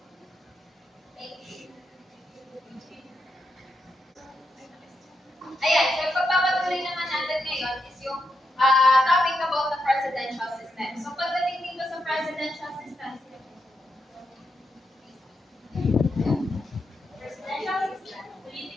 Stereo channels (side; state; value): both; normal; correlation 0.83